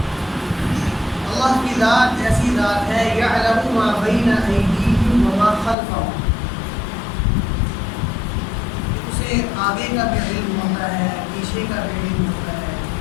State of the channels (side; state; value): right; drops out; at 5.8 s